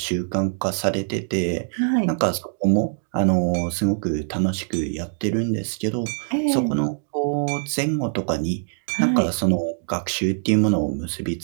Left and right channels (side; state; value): left; silent; digital silence